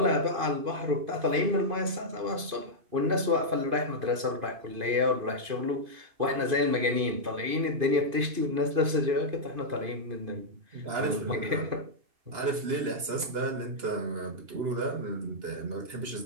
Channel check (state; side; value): late; left; 2.5 ms